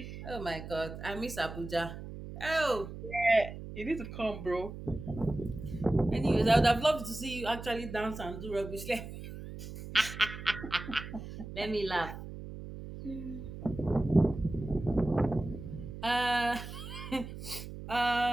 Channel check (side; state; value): right; noise; hum, 10 dB below the sound